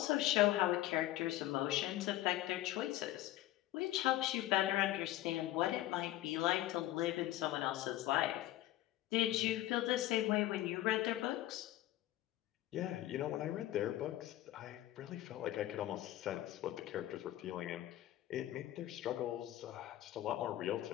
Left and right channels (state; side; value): quieter; right; 15.0 dB